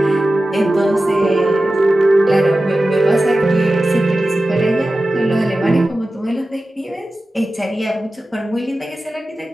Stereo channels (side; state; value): both; normal; correlation 0.94